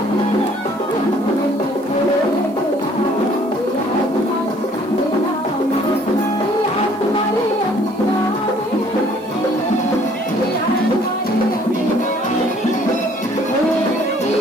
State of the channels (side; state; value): right; noise; hiss, 27 dB below the sound